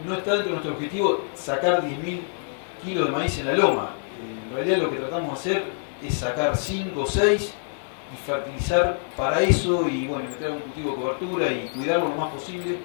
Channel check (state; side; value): silent; right; 60 dB below the other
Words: no está dentro de nuestro objetivo sacar 10.000 kilos de maíz en la loma. En realidad lo que tratamos de hacer es sacar 5 o 6 y fertilizar para eso y bueno, meter algún cultivo de cobertura y cuidarlo lo más posible,